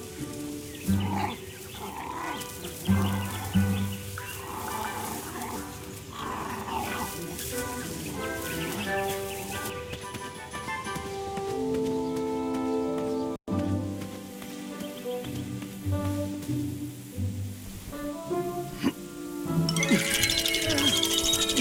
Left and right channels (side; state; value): both; identical; correlation 1.00